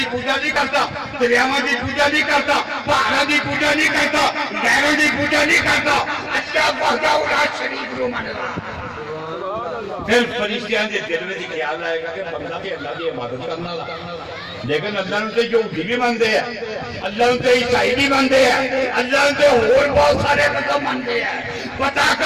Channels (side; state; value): both; identical; correlation 1.00